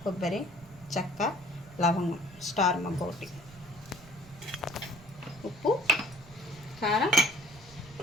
కొబ్బరి, చెక్క, లవంగం, స్టార్ మగ్గొకటి, ఉప్పు, కారం,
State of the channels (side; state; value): right; noise; rumble, 21 dB below the sound